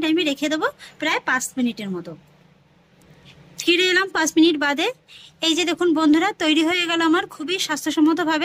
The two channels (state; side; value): identical; both; correlation 1.00